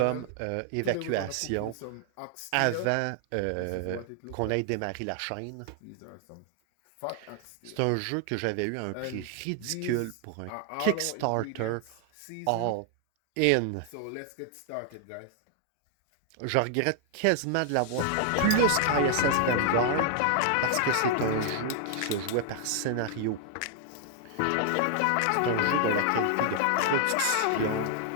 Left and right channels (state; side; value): different; both; correlation 0.00